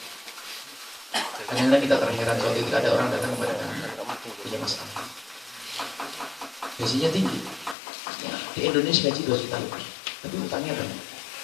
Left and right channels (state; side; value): drops out; right; at 7.8 s